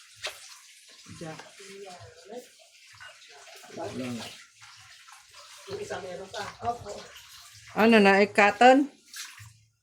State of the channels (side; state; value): both; identical; correlation 1.00